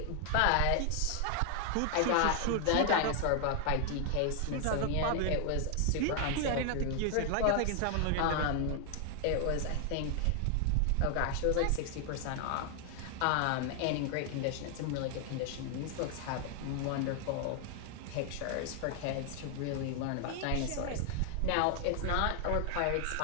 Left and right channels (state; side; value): different; both; correlation 0.00